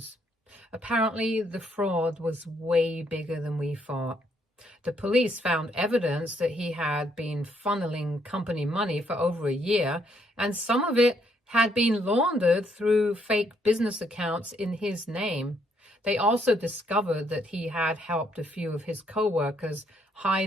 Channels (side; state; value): both; normal; correlation 0.71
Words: Apparently, the fraud was way bigger than we thought. The police found evidence that he had been funneling company money for over a year, and some of it had been laundered through fake business accounts in his name. They also discovered that he had helped a few of his co-workers